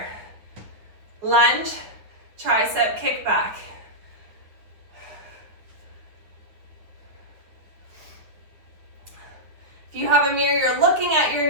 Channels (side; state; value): left; late; 9.3 ms